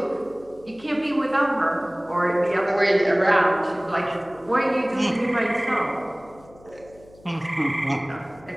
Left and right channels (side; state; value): left; noise; hum, 25 dB below the sound